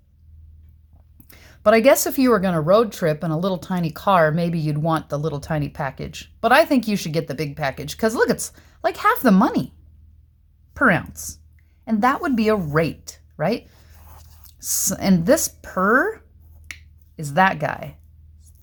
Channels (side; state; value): both; identical; correlation 1.00